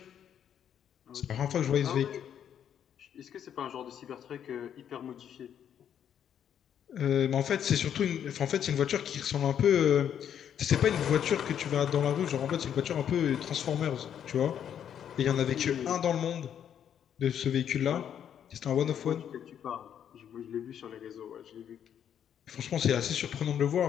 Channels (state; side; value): quieter; right; 9.2 dB